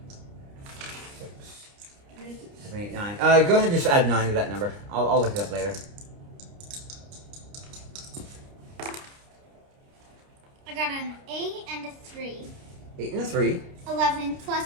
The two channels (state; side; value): late; left; 29 ms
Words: 6, 7, 8, 9. Go ahead and just add 9 to that number. I'll look it up later. I got an 8 and a 3. 8 and a 3. 11